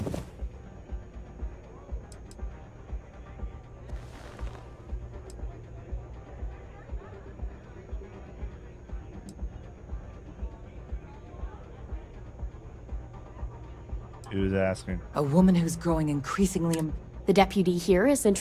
He was asking. A woman who's growing increasingly... The deputy here is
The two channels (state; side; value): identical; both; correlation 1.00